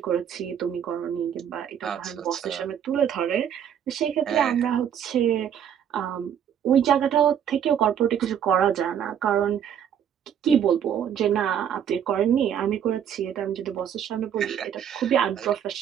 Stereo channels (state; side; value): quieter; left; 8.9 dB